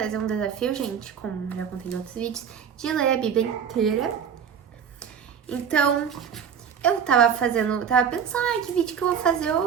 um desafio, gente, como já contei em outros vídeos, de ler a Bíblia inteira. Então, eu tava pensando, que vídeo que eu vou fazer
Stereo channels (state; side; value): quieter; left; 7.6 dB